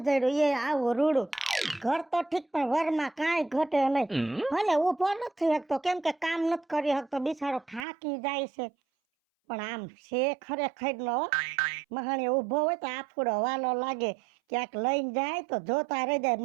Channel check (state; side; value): drops out; left; at 7.9 s